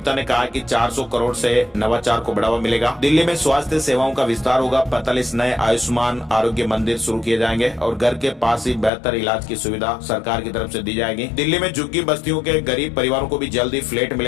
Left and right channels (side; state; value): right; drops out; at 8.9 s